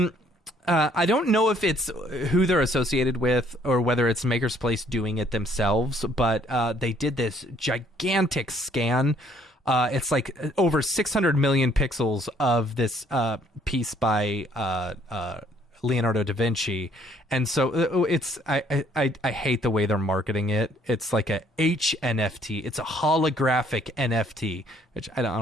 don't know if it's who they're associated with or whether it's Maker's Place doing it themselves, but they did this gigantic scan. It's like over 600 million pixels of this piece by Leonardo da Vinci, and so it's I hate the way they're marketing it. It's like a HNFT. It's a holographic NFT, which I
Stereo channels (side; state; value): both; normal; correlation 0.63